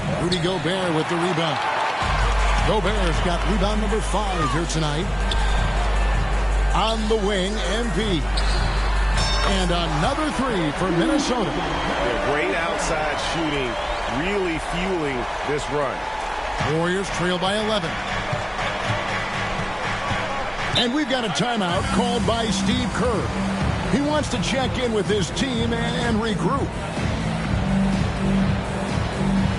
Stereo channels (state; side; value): identical; both; correlation 1.00